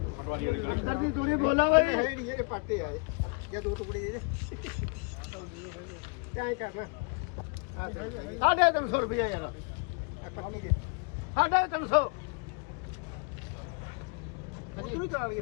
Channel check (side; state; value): right; quieter; 32.9 dB